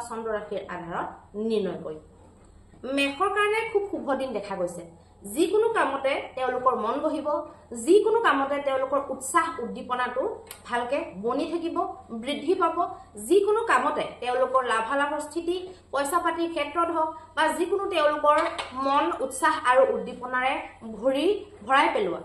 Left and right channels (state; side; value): identical; both; correlation 1.00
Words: চন্দ্ৰ ৰাশিৰ আধাৰত নিৰ্ণয় কৰিম। মেষৰ কাৰণে খুব শুভ দিন দেখা গৈছে। যিকোনো কামতে তেওঁলোকৰ মন বহিব, যিকোনো কামতে তেওঁলোকৰ উৎসাহ উদ্দীপনাটো ভালকে বনি থাকিব, বৃদ্ধি পাব। যিকোনো কামতে তেওঁলোকৰ লাভালাভৰ স্থিতি পইচা পাতিৰ ক্ষেত্ৰত হওক বা যিকোনো তেওঁলোকৰ মন উৎসাহ আৰু উদ্দীপনাৰে ভৰাই পেলোৱা